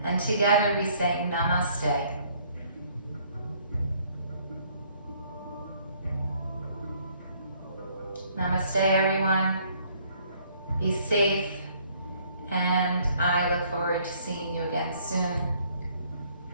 And together we say Namaste. Namaste, everyone. Be safe, and I look forward to seeing you again soon.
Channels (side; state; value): both; inverted; correlation -0.62